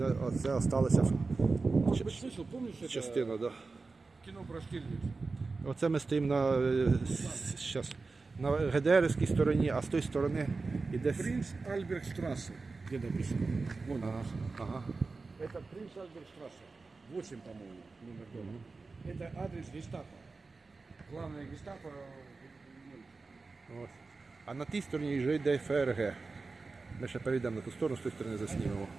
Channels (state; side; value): quieter; left; 4.0 dB